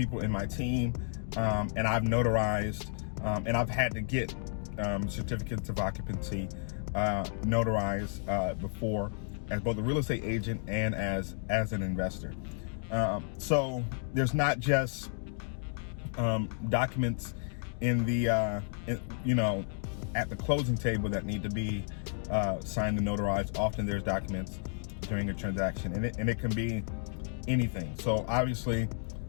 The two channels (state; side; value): silent; right; 56 dB below the other